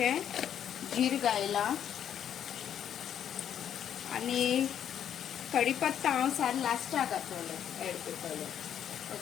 जीर घायला आनी कढीपत्ता हांव सार लास्टाक घातलें एड करतलें.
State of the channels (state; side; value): quieter; right; 9.4 dB